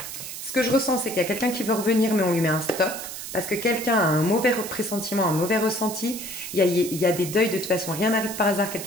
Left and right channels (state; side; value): noise; right; hiss, 9 dB below the sound